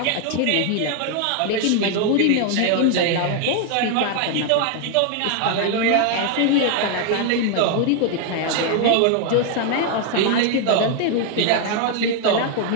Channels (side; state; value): both; different; correlation 0.00